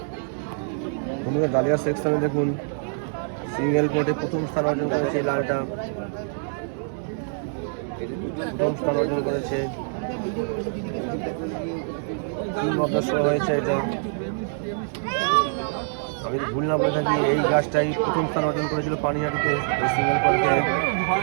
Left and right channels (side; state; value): left; silent; 61 dB below the other